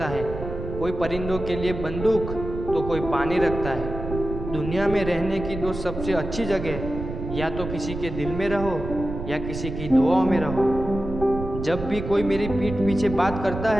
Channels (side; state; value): right; noise; rumble, 8 dB below the sound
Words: है। कोई परिंदों के लिए बंदूक तो कोई पानी रखता है। दुनिया में रहने की दो सबसे अच्छी जगह, या तो किसी के दिल में रहो या किसी की दुआओं में रहो। जब भी कोई मेरी पीठ पीछे बात करता